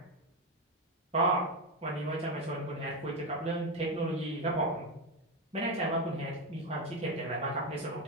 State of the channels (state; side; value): normal; both; correlation 0.12